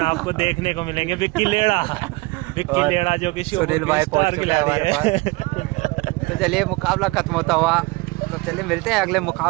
आपको देखने को मिलेंगे विक्की लेड़ा जो कि सुनील भाई पहुंच चुके हैं हमारे पास। तो चलिए मुकाबला खत्म होता हुआ, तो चलिए मिलते हैं अगले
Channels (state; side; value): quieter; left; 24.4 dB